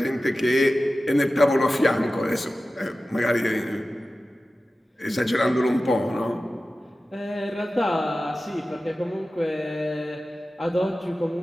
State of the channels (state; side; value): normal; both; correlation 0.95